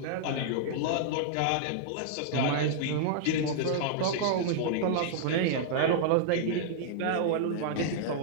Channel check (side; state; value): both; different; correlation -0.01